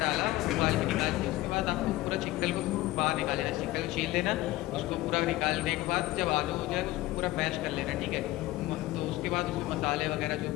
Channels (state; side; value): quieter; right; 17.5 dB